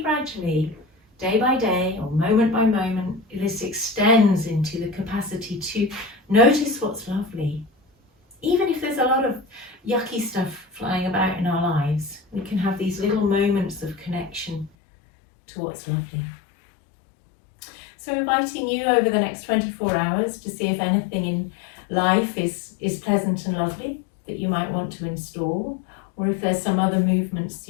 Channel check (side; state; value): right; drops out; at 14.7 s